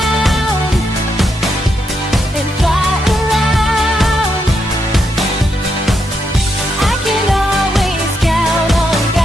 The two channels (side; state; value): both; normal; correlation 0.81